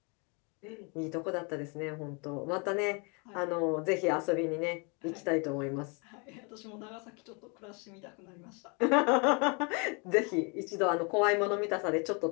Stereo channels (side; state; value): right; quieter; 33.5 dB